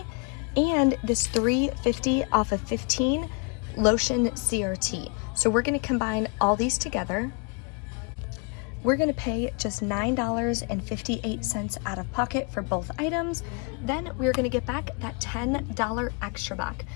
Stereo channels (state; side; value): quieter; right; 34.7 dB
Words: and this $3.50 off of 15 lotion CRT. So we're gonna combine all these together. We're gonna pay just $9.58 out of pocket for both items. Then we're gonna get back that $10 extra buck.